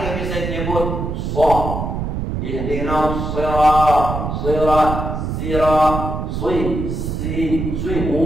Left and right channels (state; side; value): noise; right; rumble, 3 dB below the sound